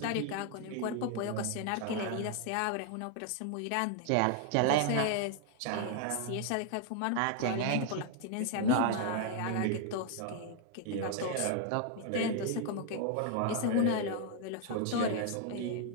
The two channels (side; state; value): both; different; correlation 0.00